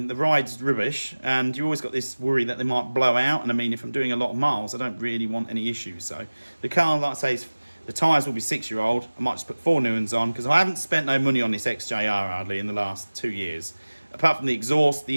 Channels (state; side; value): inverted; both; correlation -1.00